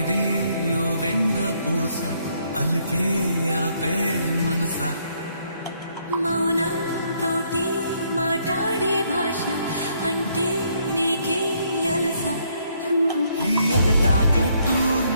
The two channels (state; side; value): inverted; both; correlation -0.70